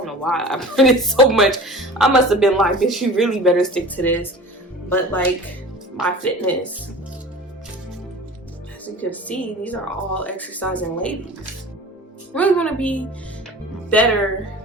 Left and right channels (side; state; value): both; normal; correlation 0.39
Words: know why I printed so much. I must have been like, bitch, you really better stick to this. But like, my fitness, as you can see, these are all exercising ladies. I really want to be better